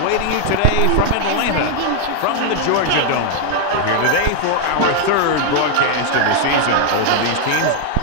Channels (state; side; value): different; both; correlation 0.00